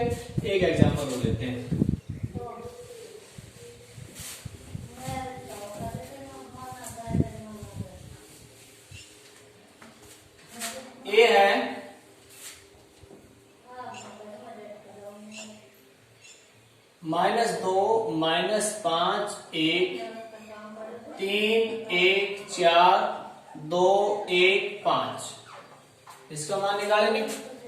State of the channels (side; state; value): both; identical; correlation 1.00